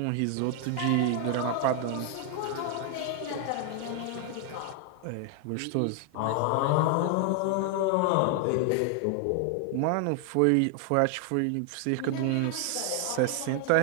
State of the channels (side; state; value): both; different; correlation 0.00